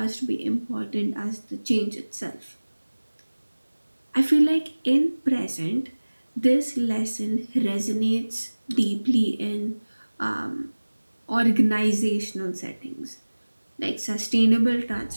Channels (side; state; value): both; inverted; correlation -1.00